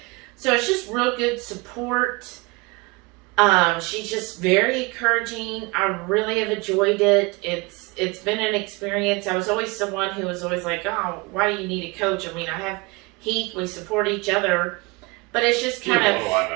So it's just real good support. She's just very encouraging. I really have enjoyed it. It's been an experience. I was always someone who was always like, oh, why do you need a coach? I mean, I have Heath. We support each other. But it's just kind of... What do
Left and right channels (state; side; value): quieter; left; 25.9 dB